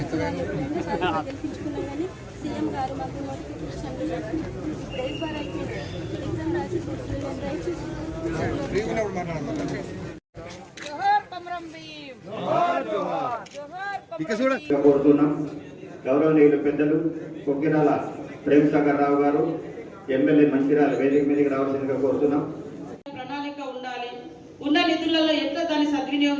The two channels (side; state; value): both; identical; correlation 1.00